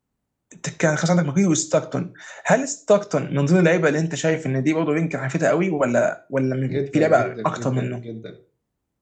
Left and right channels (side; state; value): both; identical; correlation 1.00